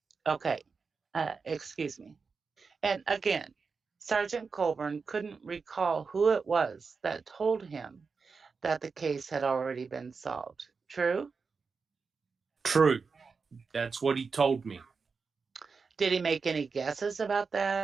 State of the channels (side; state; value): left; quieter; 4.9 dB